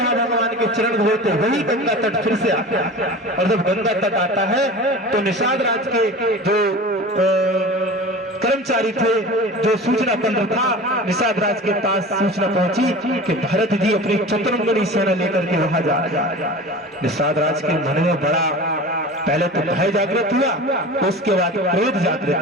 भगवान के चरण धोते, वही गंगा तट फिर से आता है। और जब गंगा तट आता है तो निषाद राज के जो कर्मचारी थे, जो सूचना केंद्र था, निषाद राज के पास सूचना पहुंची कि भरत जी अपनी चतुरंगनी सेना लेकर के वहां जा रहे हैं। निषाद राज के मन में बड़ा पहले तो भय जागृत हुआ, उसके बाद क्रोध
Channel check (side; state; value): both; normal; correlation 0.35